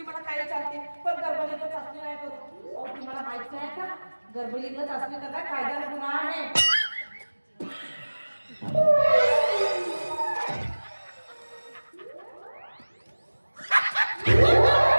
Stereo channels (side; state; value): both; inverted; correlation -1.00